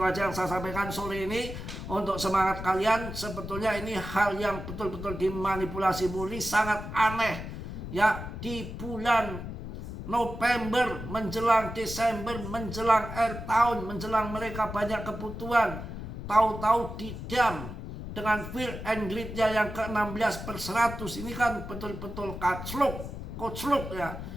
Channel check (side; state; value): left; noise; rumble, 8 dB below the sound